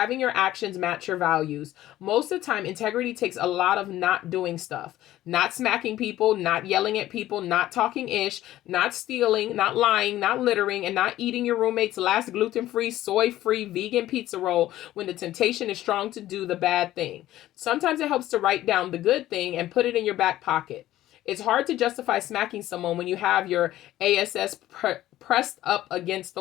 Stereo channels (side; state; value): right; quieter; 14.4 dB